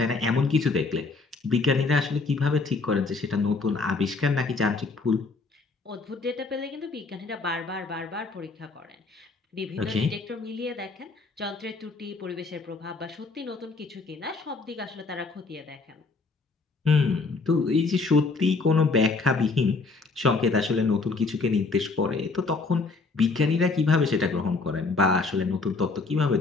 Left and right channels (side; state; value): right; quieter; 3.9 dB